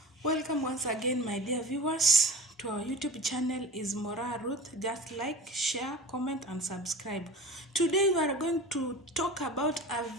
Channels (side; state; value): both; normal; correlation 0.36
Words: Welcome once again, my dear viewers, to our YouTube channel is Mora Ruth. Just like, share, comment, and subscribe. Today we are going to talk about